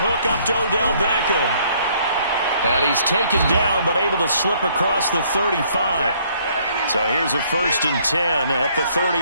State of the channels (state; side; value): inverted; both; correlation -0.64